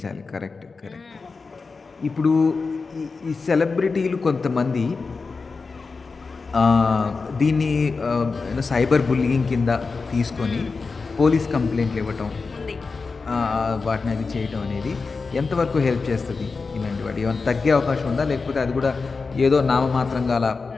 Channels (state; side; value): quieter; right; 4.4 dB